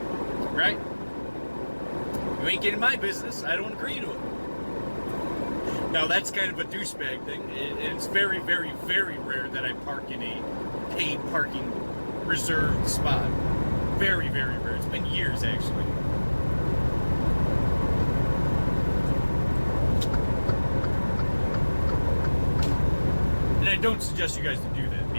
Right? You ain't getting my business. I don't agree to it. Now, that's kind of a douchebag thing. It's very, very, very rare that I park in a paid parking reserved spot. Very, very rare. It's been years, actually. And I don't suggest you guys to do that,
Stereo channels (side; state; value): both; inverted; correlation -1.00